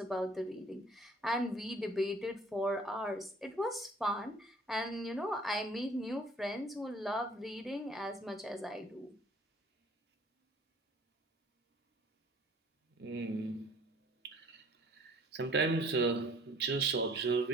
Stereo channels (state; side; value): normal; both; correlation 0.54